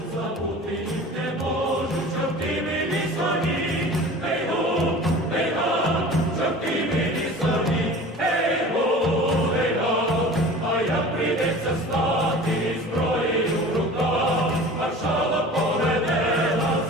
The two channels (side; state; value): both; normal; correlation 0.40